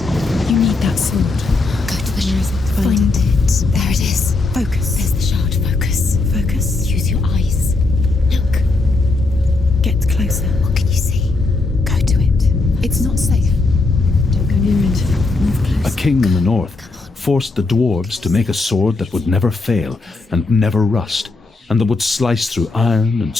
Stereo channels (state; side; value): quieter; right; 3.4 dB